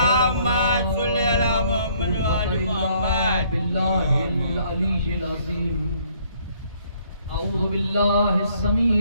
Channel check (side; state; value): both; inverted; correlation -0.64